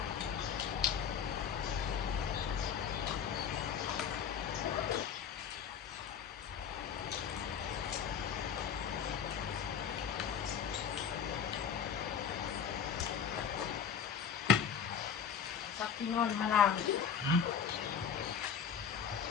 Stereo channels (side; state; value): right; quieter; 7.3 dB